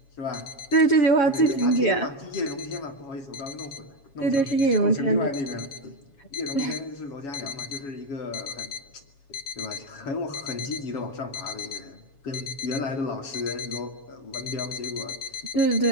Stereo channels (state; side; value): late; right; 7.3 ms